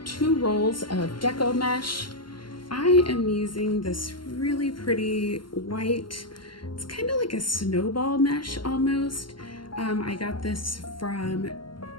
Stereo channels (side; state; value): right; late; 0.72 ms